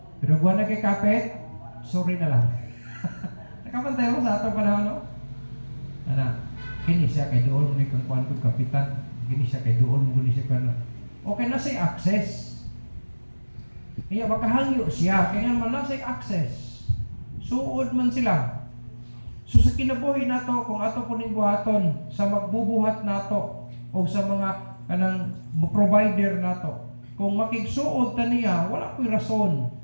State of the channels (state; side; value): inverted; both; correlation -1.00